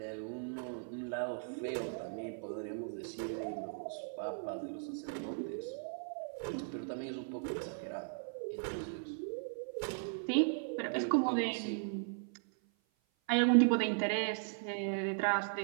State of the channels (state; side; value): silent; left; 53 dB below the other